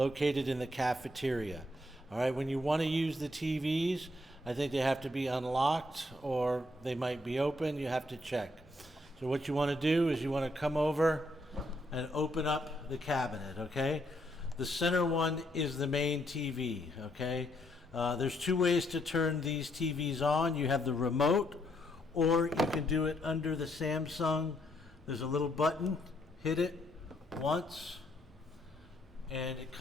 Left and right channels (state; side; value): normal; both; correlation 0.74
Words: in the cafeteria. All right, when you want to use the TVs, I think they have to be unlocked or they might be open. You have to check. So what you want to do is you want to come over and open up the cabinet, okay? The center one is the main TV, okay? There's two ways to turn these TVs on. You have the remote, or you can do it under the Samsung. There's a little button, hit it once, and it